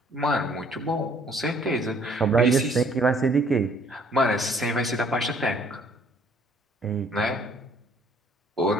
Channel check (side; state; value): both; normal; correlation 0.61